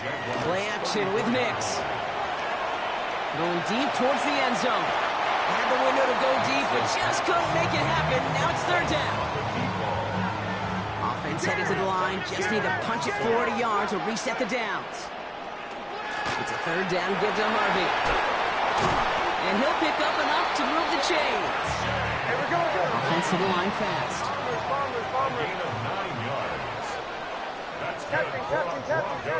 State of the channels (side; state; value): both; identical; correlation 1.00